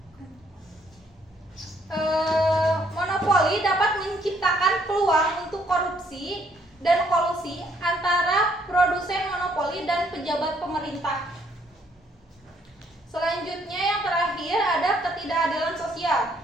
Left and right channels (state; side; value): normal; both; correlation 0.68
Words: monopoli dapat menciptakan peluang untuk korupsi dan kolusi antara produsen monopoli dan pejabat pemerintah. Selanjutnya yang terakhir ada ketidakadilan sosial.